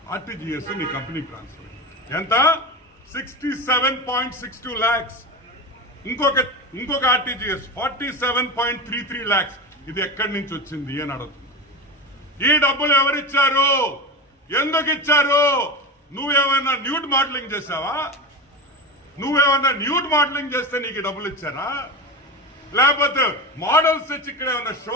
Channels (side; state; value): both; normal; correlation 0.23